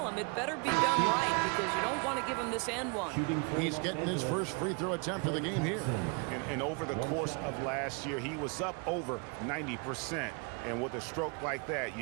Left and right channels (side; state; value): left; quieter; 34.6 dB